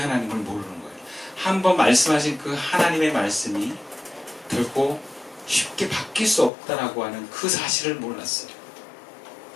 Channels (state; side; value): drops out; right; at 6.5 s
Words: 모르는 거예요. 한번 말씀하신 그 하나님의 말씀이 결코 쉽게 바뀔 수 없다라고 하는 그 사실을 몰랐어요.